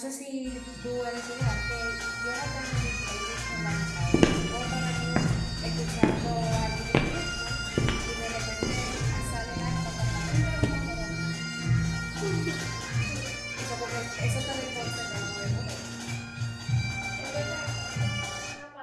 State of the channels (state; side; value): identical; both; correlation 1.00